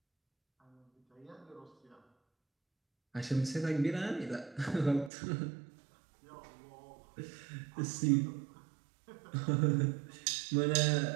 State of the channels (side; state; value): left; drops out; at 5.1 s